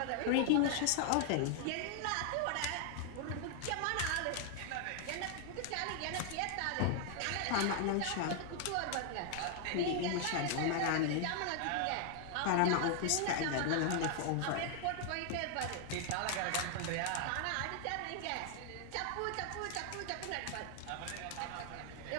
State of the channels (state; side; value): different; both; correlation 0.00